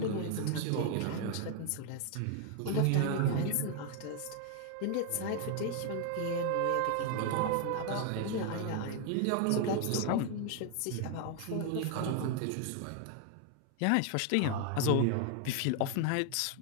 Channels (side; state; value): both; different; correlation 0.00